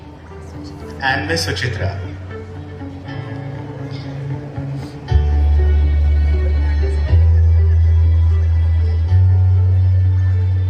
and Ms. Suchitra.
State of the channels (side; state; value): both; identical; correlation 1.00